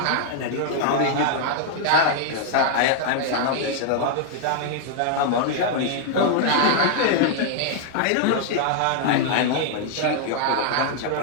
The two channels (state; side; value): different; both; correlation 0.00